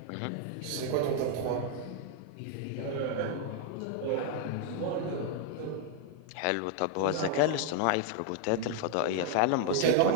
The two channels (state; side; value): different; both; correlation 0.00